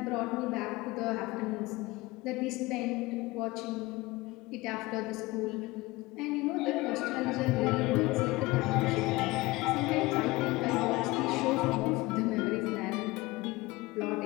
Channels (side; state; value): right; quieter; 21.1 dB